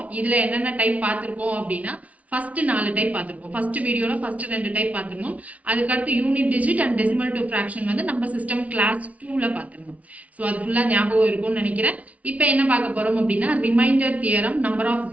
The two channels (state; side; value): late; left; 0.068 ms